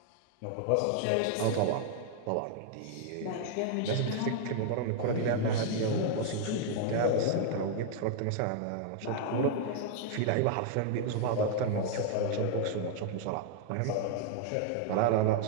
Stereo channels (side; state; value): both; different; correlation 0.00